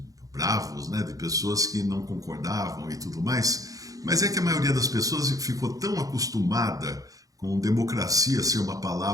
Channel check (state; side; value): late; left; 0.17 ms